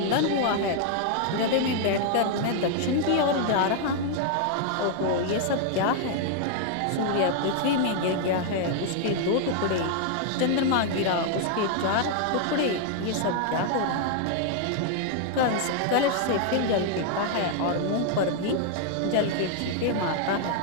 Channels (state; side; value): different; both; correlation 0.00